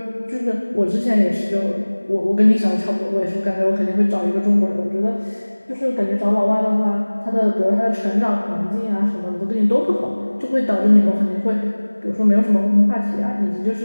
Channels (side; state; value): both; inverted; correlation -1.00